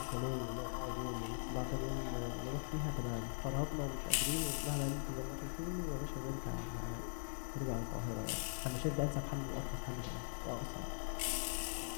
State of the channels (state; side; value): silent; right; 50 dB below the other